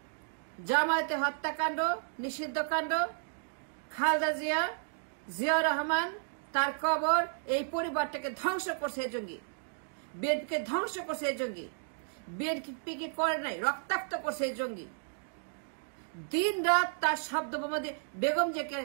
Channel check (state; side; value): silent; left; digital silence